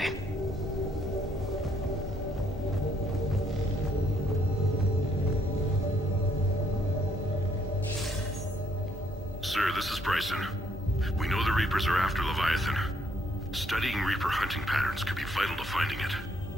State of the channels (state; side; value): normal; both; correlation 0.69